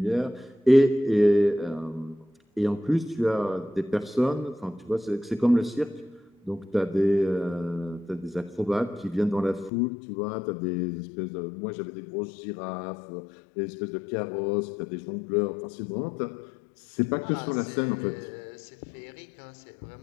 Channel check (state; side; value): drops out; right; at 9.7 s